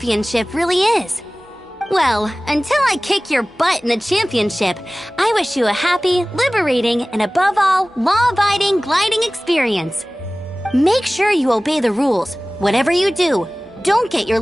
really is. Well, until I kick your butt in the championship, I wish you a happy, liberating, and above all, law-abiding gliding experience. Make sure you obey the rules. Whatever you do, don't get your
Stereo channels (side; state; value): both; normal; correlation 0.98